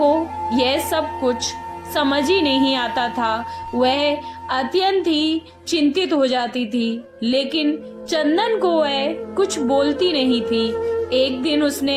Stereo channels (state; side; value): identical; both; correlation 1.00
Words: को यह सब कुछ समझ ही नहीं आता था। वह अत्यंत ही चिंतित हो जाती थी, लेकिन चंदन को वह कुछ बोलती नहीं थी। एक दिन